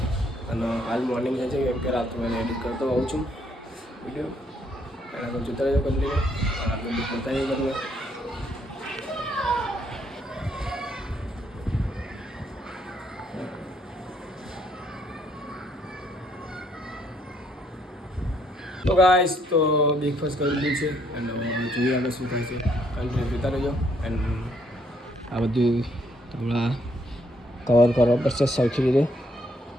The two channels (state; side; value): normal; both; correlation 0.70